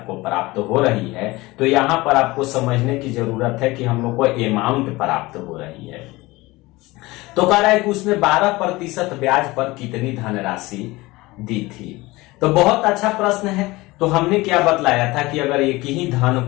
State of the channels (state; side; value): quieter; right; 20.9 dB